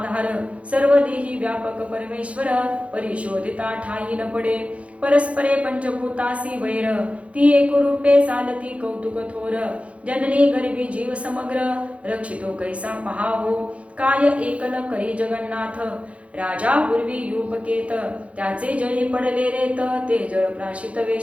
सर्व देही व्यापक परमेश्वर, परिशोधिता ठाई न पडे, परस्परे पंचभूतासी वैर, ती एकरूपे चालती कौतुक थोर, जननी गर्भी जीव समग्र, रक्षितो कैसा पहावो, काय एकल करी जगन्नाथ, राजा पूर्वी युपकेत, त्याचे जळी पडले रेत, ते जळ प्राशित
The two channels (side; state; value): left; late; 0.063 ms